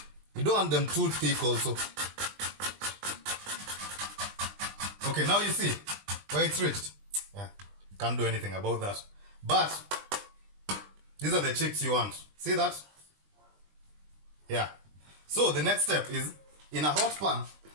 You don't want them too thick also. Okay, now you see where it's reached. Yeah, can't do anything about that. But these are the chips you want. See that? Yeah. So the next step is in a hot pan,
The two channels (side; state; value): left; late; 20 ms